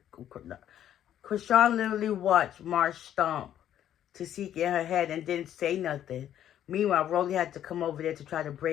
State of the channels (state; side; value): quieter; right; 10.8 dB